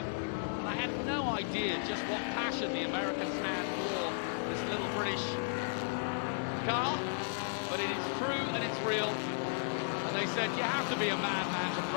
And I had no idea just what passion the Americans had for this little British car. But it is true and it's real. And they said, you have to be a madman to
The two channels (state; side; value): silent; right; digital silence